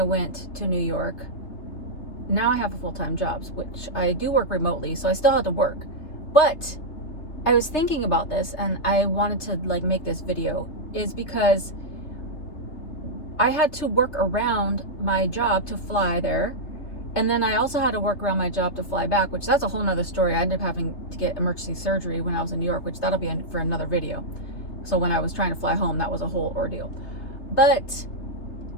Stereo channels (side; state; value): right; late; 3.3 ms